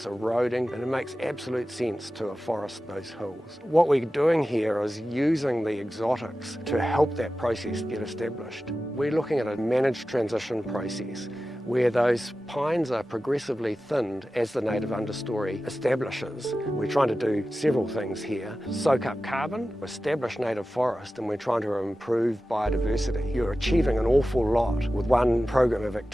eroding, and it makes absolute sense to afforest those hills. What we're doing here is using the exotics to help that process get established. We're looking at a managed transition process where those pines are progressively thinned as the native understory establishes. We're trying to do several things here. Soak up carbon, establish native forest, and we're trying to improve biodiversity. You're achieving an awful lot with one program of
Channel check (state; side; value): normal; both; correlation 0.94